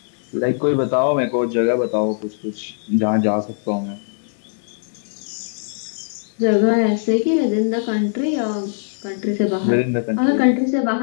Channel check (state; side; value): silent; right; digital silence